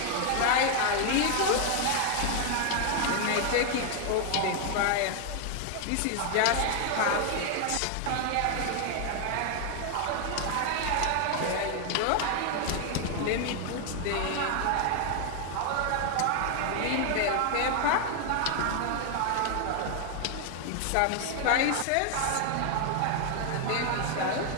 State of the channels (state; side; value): different; both; correlation 0.00